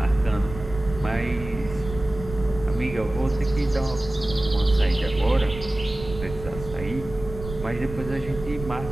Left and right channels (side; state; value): right; noise; rumble, 11 dB below the sound